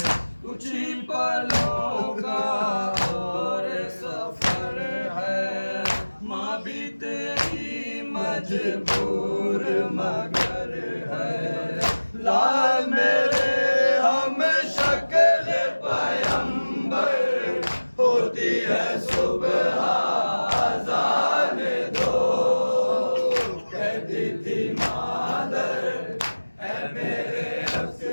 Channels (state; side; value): inverted; both; correlation -1.00